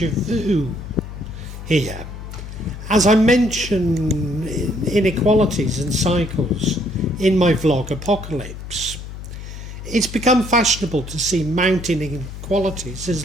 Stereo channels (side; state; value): left; noise; hum, 11 dB below the sound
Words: vu here. As I mention inequalities and cycles in my vlog Apocalypse, it's become fashionable to see mounting inequalities